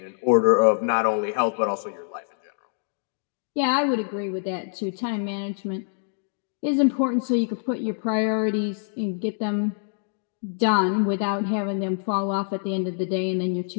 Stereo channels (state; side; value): silent; right; digital silence